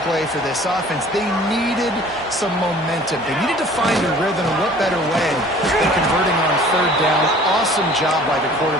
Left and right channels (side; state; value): both; normal; correlation 0.49